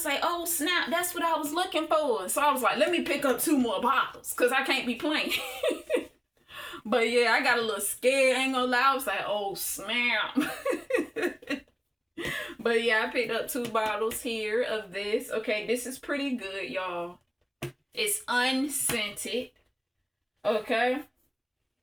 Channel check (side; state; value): both; identical; correlation 1.00